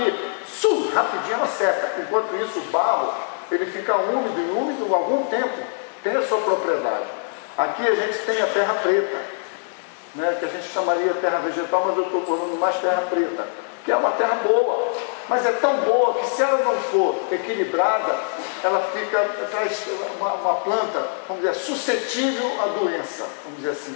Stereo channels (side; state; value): right; silent; 63 dB below the other